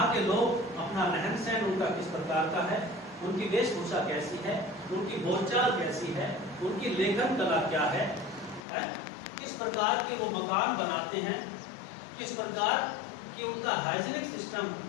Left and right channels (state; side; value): drops out; right; at 8.6 s